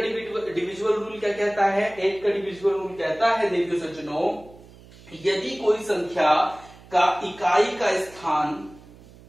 रूल क्या कहता है? 8 का डिविजिबल रूल कहता है देखिए सज्जनों, यदि कोई संख्या का इकाई का स्थान,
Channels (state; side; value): noise; right; hum, 22 dB below the sound